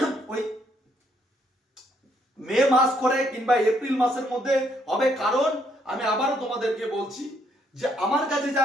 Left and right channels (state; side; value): normal; both; correlation 0.71